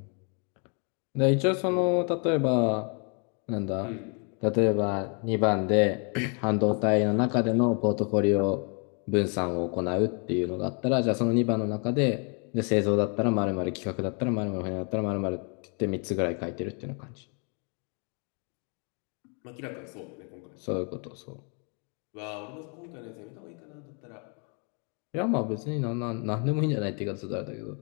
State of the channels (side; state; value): right; quieter; 38.1 dB